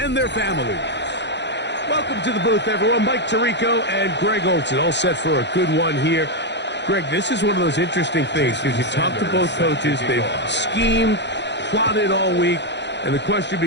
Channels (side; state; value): right; late; 0.51 ms